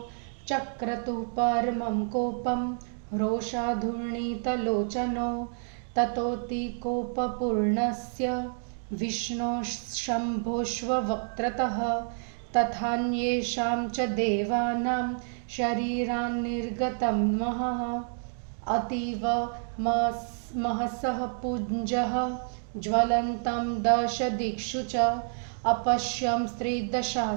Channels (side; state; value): left; silent; 59 dB below the other